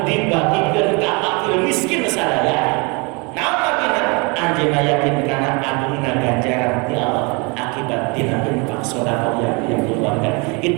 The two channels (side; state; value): left; quieter; 30.0 dB